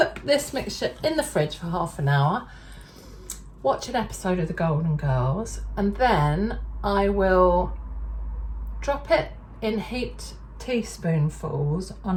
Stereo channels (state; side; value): identical; both; correlation 1.00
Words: this mixture in the fridge for half an hour, watch an episode of the Golden Girls, and then I will drop it in heaped teaspoonfuls on